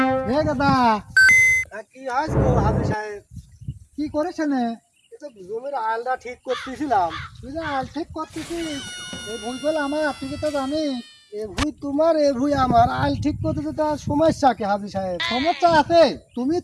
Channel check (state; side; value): identical; both; correlation 1.00